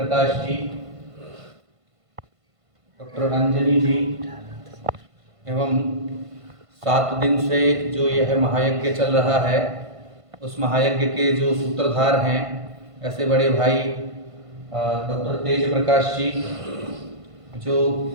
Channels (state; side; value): late; left; 1.5 ms